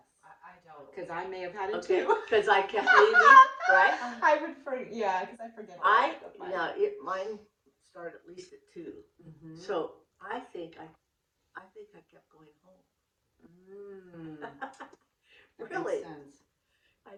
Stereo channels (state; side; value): identical; both; correlation 1.00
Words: I don't. Because I may have had it Okay, too. because I kept leaving, right? I would forget. Yeah, because I forget. Mine started at least at 2. Mm-hmm. So I think I kept going home. Really, Makes sense. I